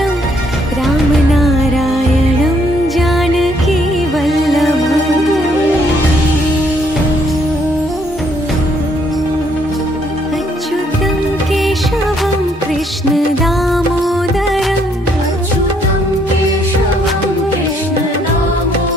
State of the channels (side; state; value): both; normal; correlation 0.69